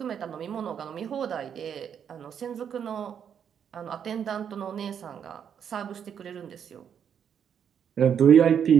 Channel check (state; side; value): quieter; left; 8.1 dB